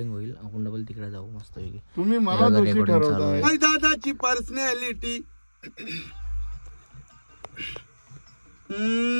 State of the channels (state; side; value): inverted; both; correlation -1.00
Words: होईल. आपण डबल तिकडे जाऊ मस्त पैकी. तुम्ही मला दोषी ठरवताय. हाय दादाची पर्सनॅलिटी.